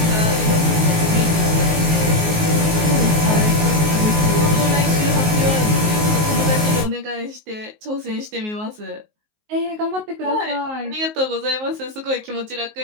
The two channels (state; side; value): late; left; 19 ms